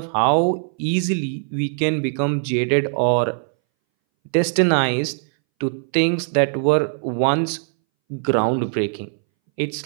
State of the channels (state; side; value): silent; left; 63 dB below the other